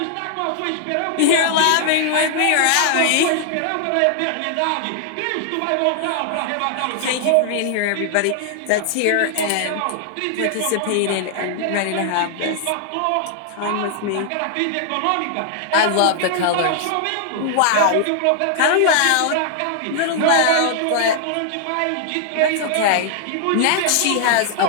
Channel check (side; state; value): both; different; correlation 0.00